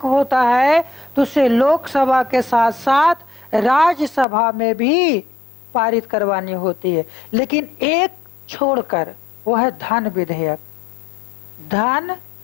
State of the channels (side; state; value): right; drops out; at 4.2 s